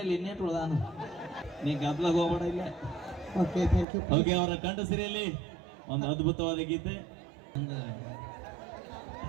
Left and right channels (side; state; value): left; drops out; at 3.9 s